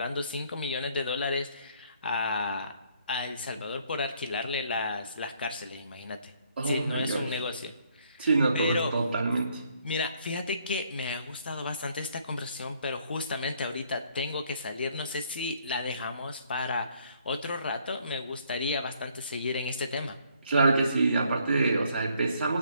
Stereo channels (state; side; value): inverted; both; correlation -0.66